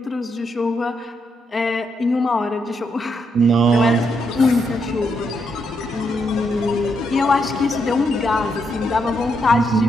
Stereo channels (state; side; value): normal; both; correlation 0.79